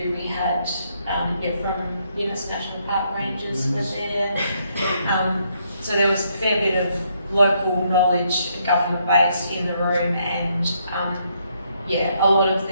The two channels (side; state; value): both; inverted; correlation -0.74